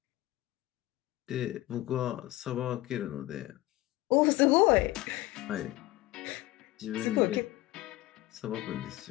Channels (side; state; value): right; quieter; 17.9 dB